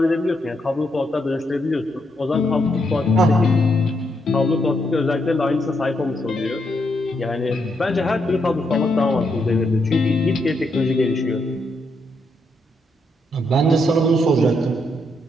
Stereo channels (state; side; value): normal; both; correlation 0.79